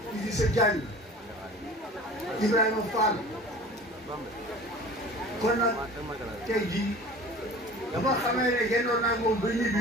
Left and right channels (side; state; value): both; normal; correlation 0.42